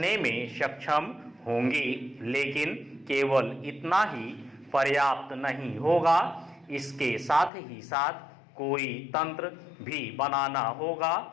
में सक्षम होंगी, लेकिन केवल इतना ही पर्याप्त नहीं होगा। इसके साथ ही साथ कोई तंत्र भी बनाना होगा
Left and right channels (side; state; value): right; drops out; at 7.5 s